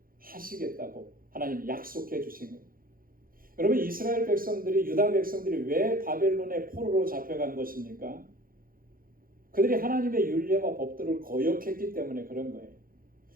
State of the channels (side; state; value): left; late; 0.42 ms